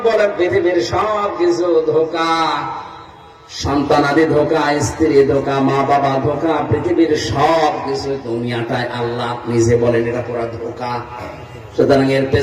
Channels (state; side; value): identical; both; correlation 1.00